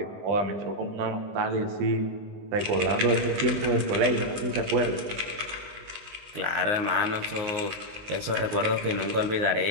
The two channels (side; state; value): left; late; 19 ms